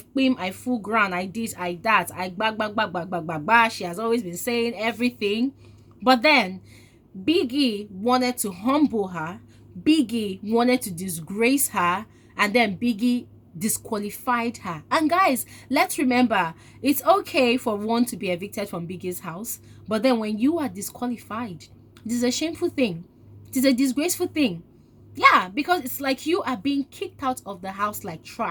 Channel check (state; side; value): identical; both; correlation 1.00